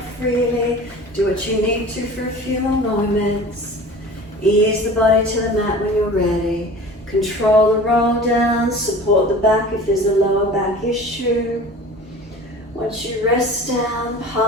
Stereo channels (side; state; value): both; normal; correlation 0.40